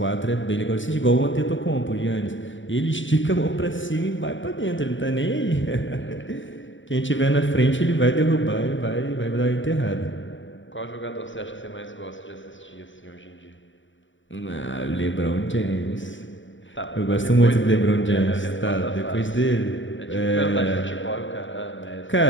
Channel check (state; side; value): late; right; 0.55 ms